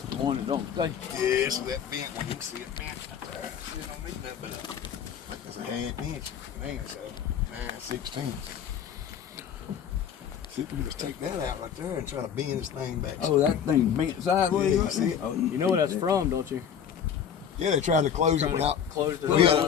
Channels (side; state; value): right; quieter; 8.2 dB